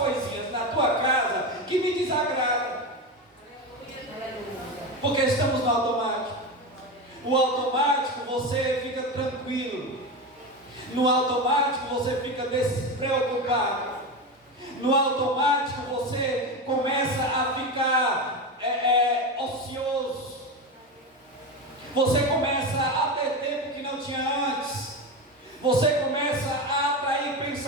na tua casa que me desagradam, porque estamos no automático. O automático, você fica tranquilo. No automático você fica despreocupado. No automático você começa a ficar ocioso. Você começa a ter tempo que não tinha antes. Você começa a atrair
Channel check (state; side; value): normal; both; correlation 0.19